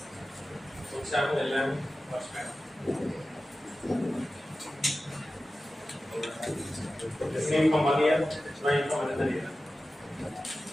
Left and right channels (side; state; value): both; normal; correlation 0.94